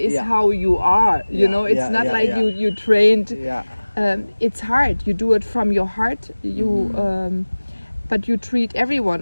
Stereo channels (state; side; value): inverted; both; correlation -1.00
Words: Yeah. how you are. You Yeah, know, it's yeah, not yeah, like yeah. you trained. Yeah. It's hard. You do it from your heart. But you treat